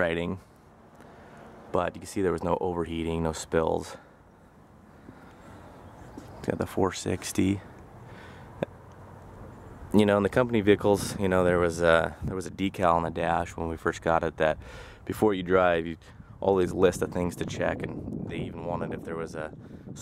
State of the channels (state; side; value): identical; both; correlation 1.00